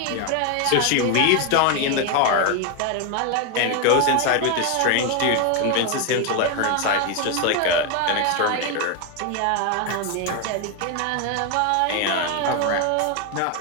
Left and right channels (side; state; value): both; different; correlation 0.01